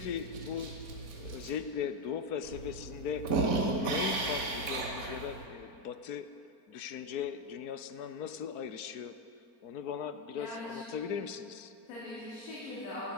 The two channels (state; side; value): late; right; 4.1 ms